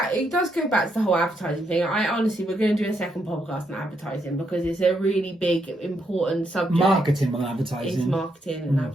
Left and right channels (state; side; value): normal; both; correlation 0.78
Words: does go back to the whole advertising thing. We're going to do a second podcast on advertising, because it's a really big, important subject. Marketing and advertising. It's marketing and